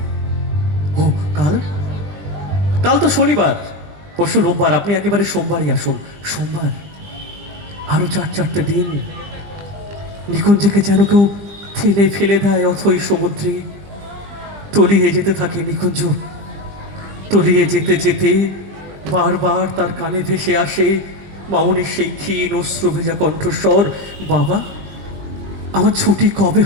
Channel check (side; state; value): left; late; 20 ms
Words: ও কাল, কাল তো শনিবার, পরশু রোববার, আপনি একেবারে সোমবারই আসুন। সোমবার? আরো 4-4টে দিন। নিকুঞ্জকে যেন কেউ ঠেলে ফেলে দেয় অথই সমুদ্রে। তলিয়ে যেতে থাকে নিকুঞ্জ, তলিয়ে যেতে যেতে বারবার তার কানে ভেসে আসে মামনির সেই ক্ষীণ অশ্রু ভেজা কণ্ঠস্বর, বাবা আমার ছুটি কবে